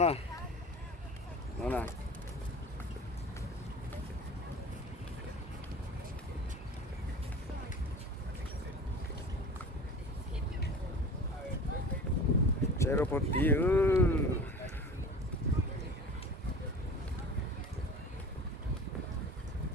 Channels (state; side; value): normal; both; correlation 0.38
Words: nó nè chế độ bột tí